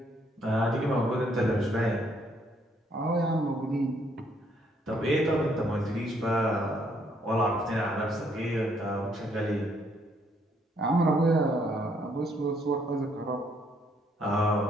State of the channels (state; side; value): normal; both; correlation 0.69